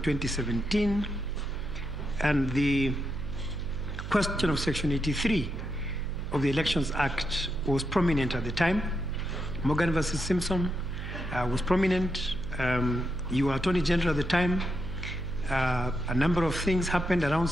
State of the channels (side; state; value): right; noise; hum, 8 dB below the sound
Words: and the question of Section 83 of the Elections Act was prominent at the time. Morgan versus Simpson was prominent. You were Attorney General at the time. A number of things happened around